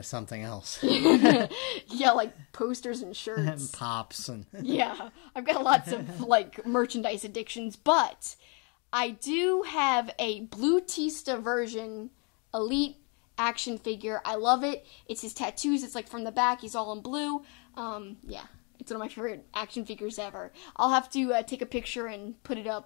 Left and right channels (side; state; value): right; quieter; 34.3 dB